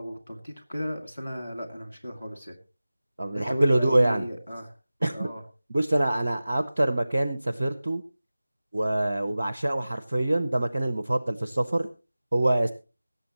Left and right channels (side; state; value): both; inverted; correlation -0.97